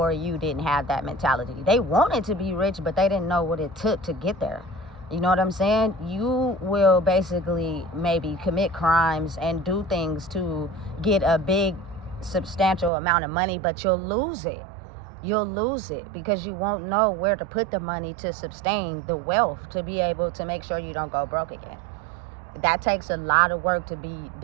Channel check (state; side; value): drops out; left; at 12.9 s